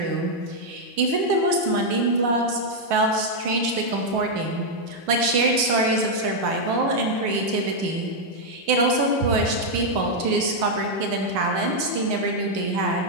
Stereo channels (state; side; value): late; left; 8.5 ms